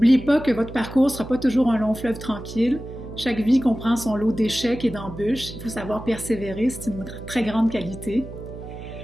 pas que votre parcours ne sera pas toujours un long fleuve tranquille. Chaque vie comprend son lot d'échecs et d'embûches. Il faut savoir persévérer, c'est une très grande qualité.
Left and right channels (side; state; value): right; noise; hum, 12 dB below the sound